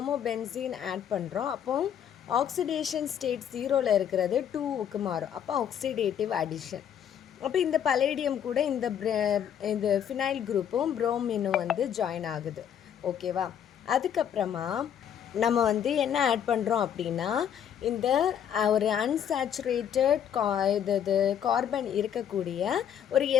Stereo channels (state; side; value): quieter; right; 9.1 dB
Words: ஆட் பண்ணுறோம். அப்போ ஆக்சிடேஷன் ஸ்டேட் 0ல் இருக்கிறது 2க்கு மாறும். அப்போ ஆக்சிடேட்டிவ் அடிஷன். அப்போ இந்த பலேடியம் கூட இந்த ஃபினைல் குரூப்பும் ப்ரோமினும் வந்து ஜாயின் ஆகுது. ஓகேவா? அதுக்கப்புறமா நம்ம வந்து என்ன ஆட் பண்ணுறோம் அப்படின்னா இந்த ஒரு அன்சாச்சுரேட்டட் இது கார்பன் இருக்கக்கூடிய ஒரு